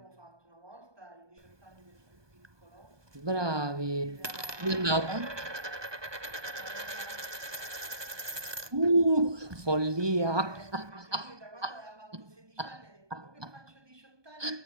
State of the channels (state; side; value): late; left; 1.2 ms